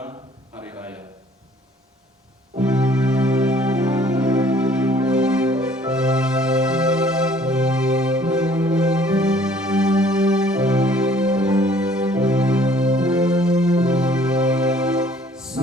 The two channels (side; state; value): both; normal; correlation 0.58